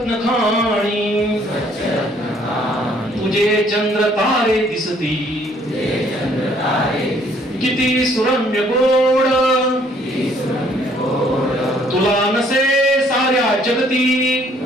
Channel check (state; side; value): normal; both; correlation 0.62